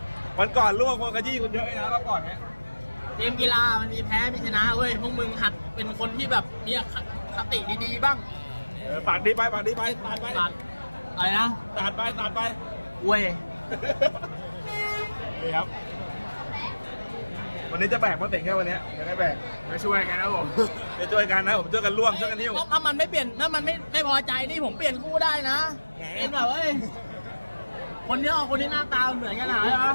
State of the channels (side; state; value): both; inverted; correlation -1.00